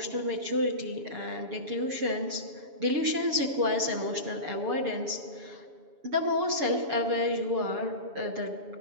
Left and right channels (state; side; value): late; left; 7.1 ms